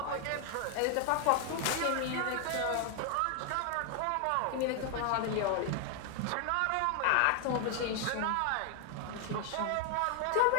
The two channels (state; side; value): different; both; correlation 0.00